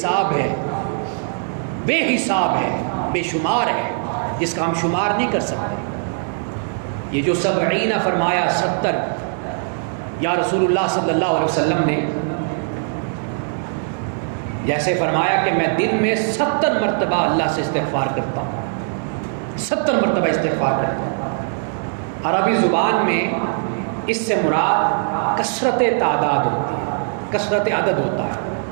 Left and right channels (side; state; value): left; silent; digital silence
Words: ہے، بے حساب ہے، بے شمار ہے، جس کا ہم شمار نہیں کر سکتے۔ یہ جو 70 فرمایا، 70 یا رسول اللہ صلی اللہ علیہ وسلم نے جیسے فرمایا کہ میں دن میں 70 مرتبہ اللہ سے استغفار کرتا ہوں، 70 مرتبہ استغفار کرتا ہوں۔ عربی زبان میں اس سے مراد کثرت تعداد ہوتی ہے، کثرت عدد ہوتا ہے۔